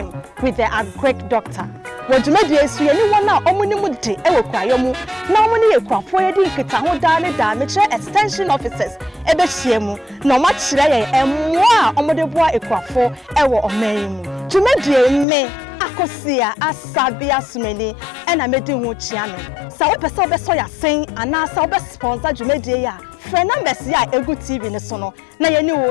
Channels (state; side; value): drops out; right; at 15.2 s